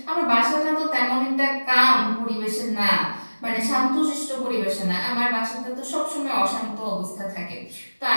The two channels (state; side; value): inverted; both; correlation -1.00